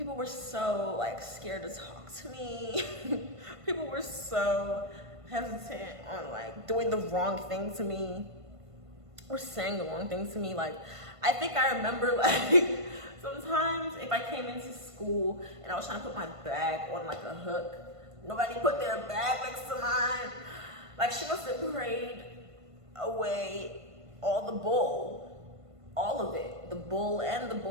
were so like scared to talk to me. People were so hesitant on like doing the wrong thing to me or saying the wrong things to me. Like, I think I remember like sometimes if I came into school and I was trying to put my bag on like a hook, nobody put their bag next to mine. Like, she must have prayed away all the bull, all of it, the bull and the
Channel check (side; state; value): left; late; 1.5 ms